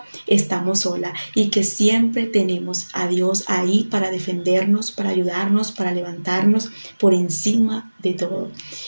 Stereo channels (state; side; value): inverted; both; correlation -1.00